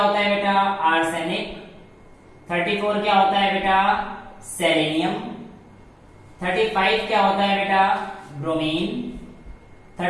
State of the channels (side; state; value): both; identical; correlation 1.00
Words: है बेटा? आर्सेनिक। 34 क्या होता है बेटा? सेलेनियम। 35 क्या होता है बेटा? ब्रोमीन।